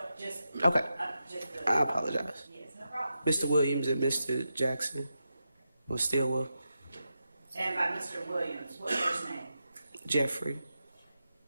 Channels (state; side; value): inverted; both; correlation -0.88